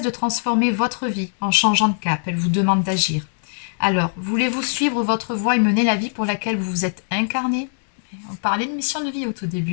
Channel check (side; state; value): right; silent; digital silence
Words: de transformer votre vie en changeant de cap, elle vous demande d'agir. Alors, voulez-vous suivre votre voie et mener la vie pour laquelle vous vous êtes incarné? On parlait de mission de vie au tout